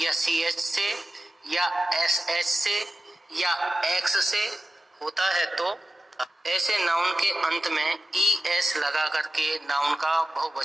या CH से या SH से या X से होता है, तो ऐसे नाउन के अंत में ES लगा करके नाउन का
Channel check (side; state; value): both; normal; correlation 0.93